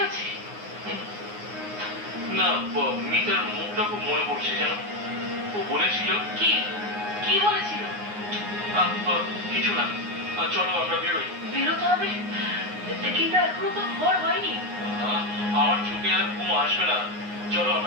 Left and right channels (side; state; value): left; late; 9.6 ms